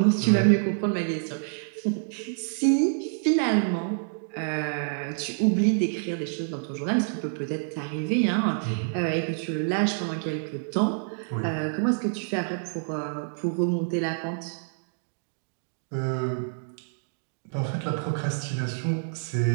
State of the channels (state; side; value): silent; left; digital silence